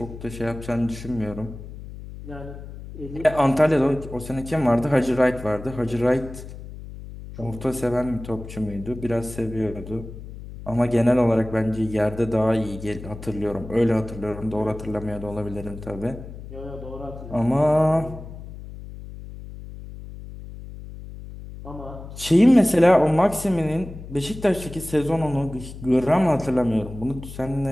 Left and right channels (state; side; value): noise; left; hum, 13 dB below the sound